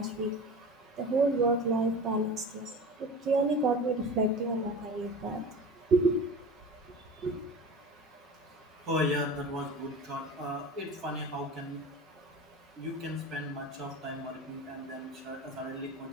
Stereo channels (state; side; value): normal; both; correlation 0.34